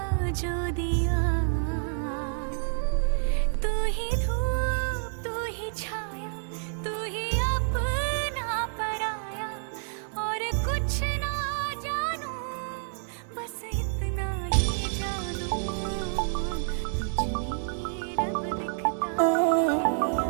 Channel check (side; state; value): left; silent; digital silence